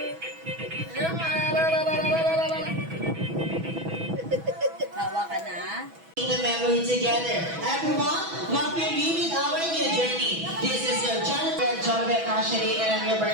Hawa ka na. The memory together. Everyone, welcome me with our new journey. This is your Jonathan Ashley, and I'm your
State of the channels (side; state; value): left; late; 6.1 ms